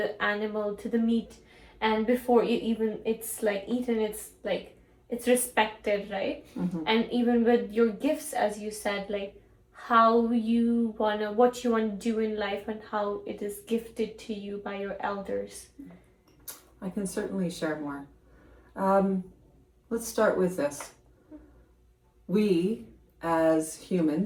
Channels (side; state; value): both; identical; correlation 1.00